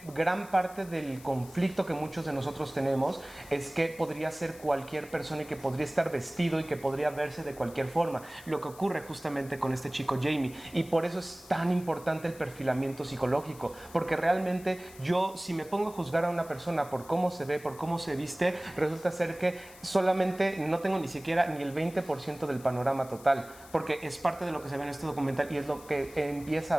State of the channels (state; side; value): noise; left; hiss, 20 dB below the sound